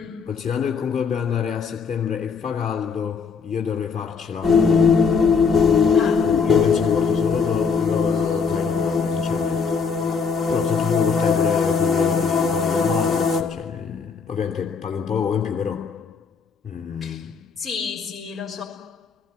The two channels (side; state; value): right; quieter; 5.5 dB